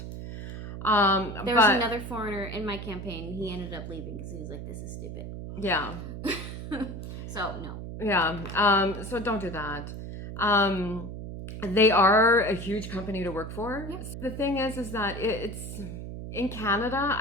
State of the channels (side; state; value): right; noise; hum, 8 dB below the sound